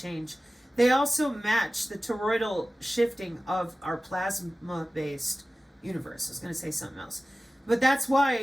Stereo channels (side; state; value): both; normal; correlation 0.96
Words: They also match the toroidal shifting of our plasma-based universe. I was going to say something else. But that's